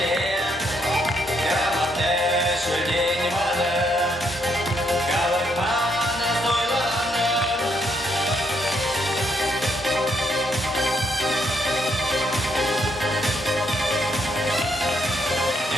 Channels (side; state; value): both; normal; correlation 0.74